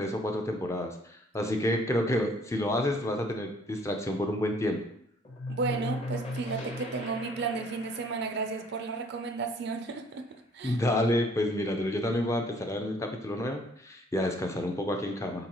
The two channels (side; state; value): both; normal; correlation 0.59